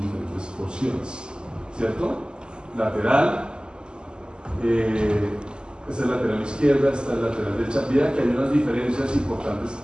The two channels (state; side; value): late; left; 0.048 ms